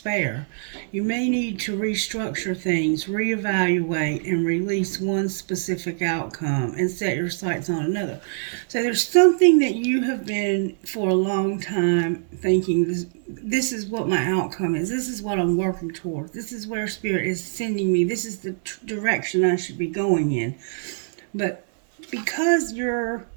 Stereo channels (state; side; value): silent; left; digital silence